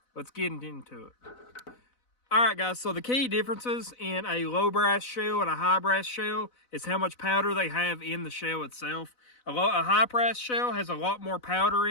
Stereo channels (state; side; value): late; right; 4.0 ms